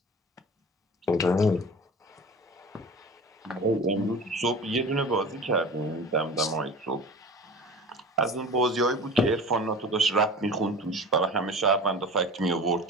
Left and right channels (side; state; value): both; normal; correlation 0.37